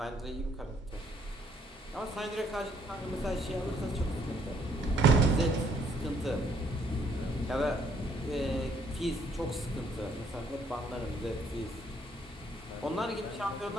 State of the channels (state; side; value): normal; both; correlation 0.66